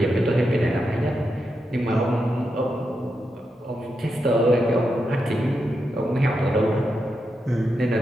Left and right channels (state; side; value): normal; both; correlation 0.86